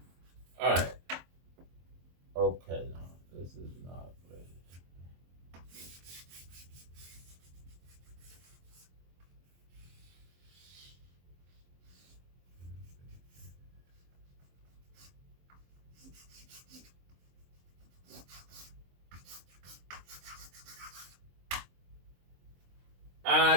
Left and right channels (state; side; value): late; left; 23 ms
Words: All right. Okay, now this is not ready. I